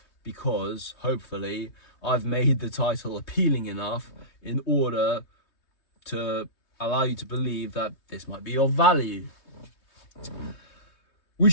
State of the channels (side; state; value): right; late; 3.2 ms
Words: because, hopefully, I've made the title appealing enough in order to allow you to believe that this might be of value.